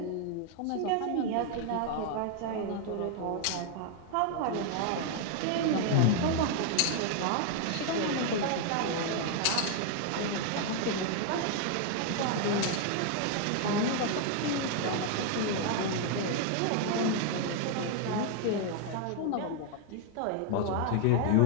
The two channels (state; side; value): different; both; correlation 0.00